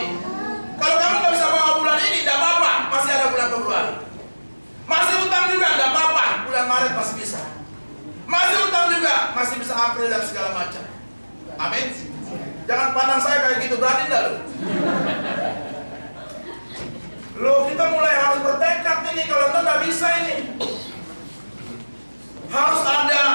Kalau kamu nggak bisa bawa bulan ini, tidak apa-apa, masih ada bulan Februari. Masih utang juga, tidak apa-apa, bulan Maret masih bisa. Masih utang juga, masih bisa April dan segala macam. Amin. Jangan pandang saya kayak gitu, berani enggak lu? Loh, kita mulai harus bertekad ini, kalau enggak nggak bisa ini. Harus ada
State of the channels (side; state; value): both; inverted; correlation -1.00